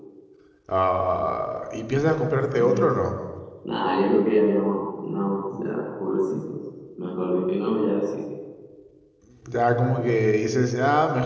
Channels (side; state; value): both; identical; correlation 1.00